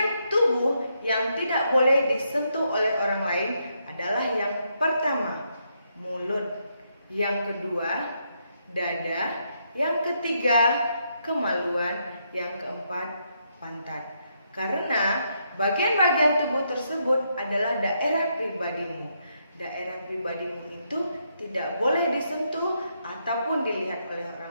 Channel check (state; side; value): inverted; both; correlation -0.78